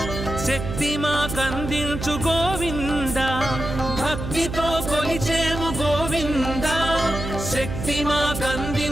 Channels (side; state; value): right; noise; hum, 6 dB below the sound